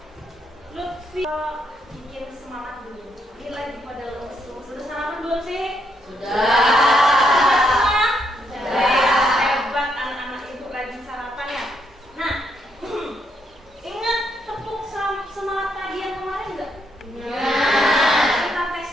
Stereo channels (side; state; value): both; normal; correlation 0.76